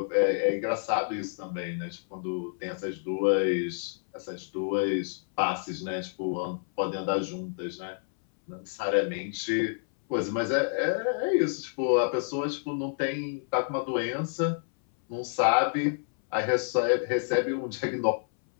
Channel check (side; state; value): right; silent; 59 dB below the other